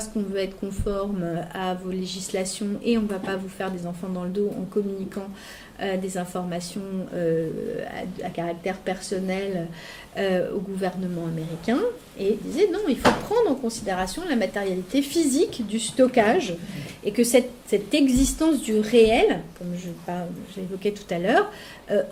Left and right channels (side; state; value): both; identical; correlation 1.00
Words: qu'on veut être conforme à vos législations et on ne va pas vous faire des enfants dans le dos en communiquant des informations à caractère personnel au gouvernement américain. Et disait non, il faut prendre en considération la matérialité physique du stockage et que cette existence du réel, comme j'évoquais tout à l'heure,